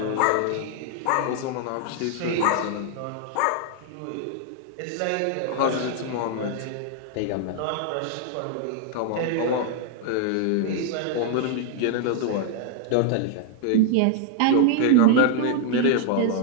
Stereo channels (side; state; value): both; different; correlation 0.00